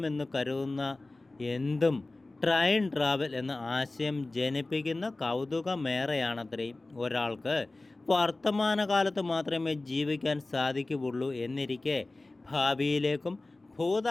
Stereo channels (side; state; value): right; quieter; 3.0 dB